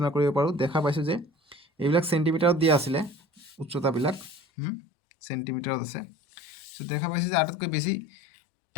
কৰিব পাৰোঁ? দেখা পাইছোঁ যে এইবিলাক চেণ্টিমিটাৰত দিয়া আছিলে, উচ্চতাবিলাক চেণ্টিমিটাৰত আছে। চ' দেখা পাইছোঁ যে আটাইতকৈ বেছি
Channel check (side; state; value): right; drops out; at 4.4 s